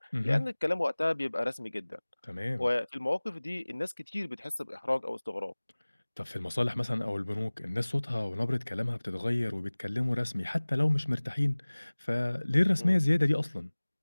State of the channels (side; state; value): both; inverted; correlation -1.00